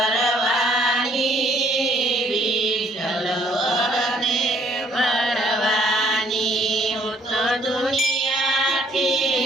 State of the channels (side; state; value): both; normal; correlation 0.63